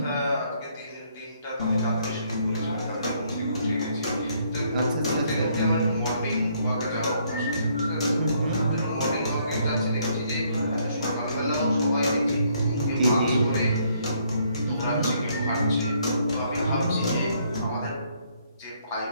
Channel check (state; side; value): inverted; both; correlation -0.68